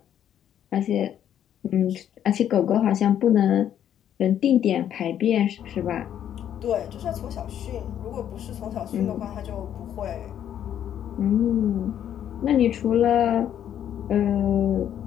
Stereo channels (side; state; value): right; quieter; 10.1 dB